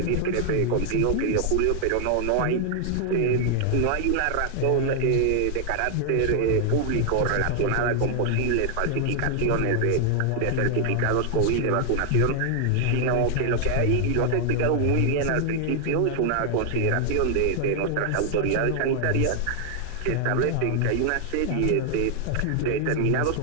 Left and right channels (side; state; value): both; different; correlation 0.00